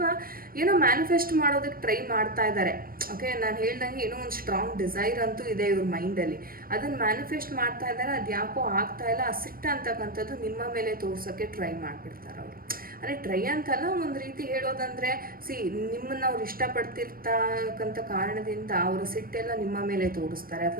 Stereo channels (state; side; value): late; left; 0.42 ms